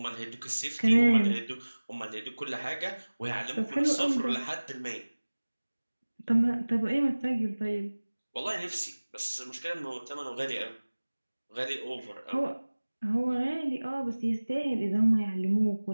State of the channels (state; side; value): inverted; both; correlation -1.00